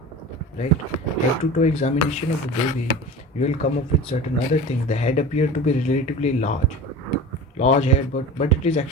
right? Head to toe examination of the baby, you will come up with certain other things. The head appears to be relatively large head, but it is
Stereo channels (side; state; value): both; normal; correlation 0.34